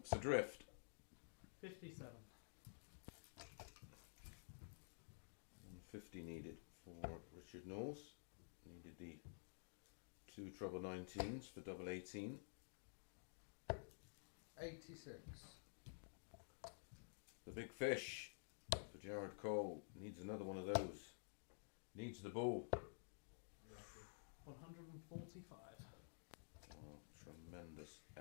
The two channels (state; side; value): silent; right; digital silence